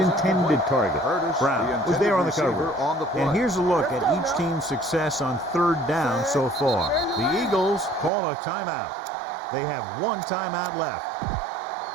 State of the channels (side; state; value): left; drops out; at 8.1 s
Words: target. Brown was there on the cover. And here's a look at each team's success on 3rd down so far. The Eagles call a timeout. They have 1 timeout left.